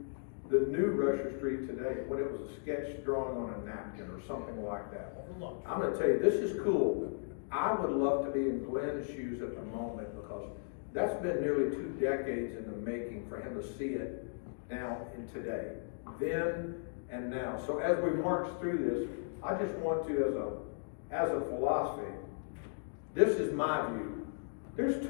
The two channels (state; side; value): silent; right; digital silence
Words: the new Rusher Street today, when it was a sketch drawing on a napkin or something like that. I'm gonna tell you, this is cool. I would love to be in Glenn's shoes at the moment, because that's been nearly 2 decades in the making for him to see it now and today, then and now. So as we march through this, I just want to, as a philosophy, this is my view. There's